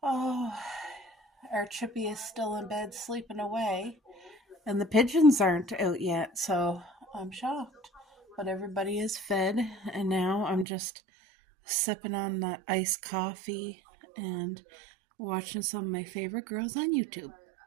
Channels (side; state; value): left; drops out; at 10.7 s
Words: Oh, our Chippy is still in bed sleeping away, and the pigeons aren't out yet, so I'm shocked. But everybody is fed, and now I'm just sipping on that iced coffee and watching some of my favorite girls on YouTube.